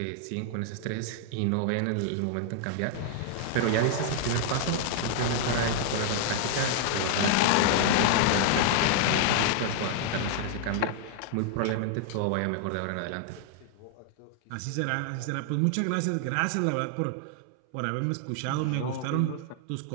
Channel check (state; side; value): different; both; correlation 0.00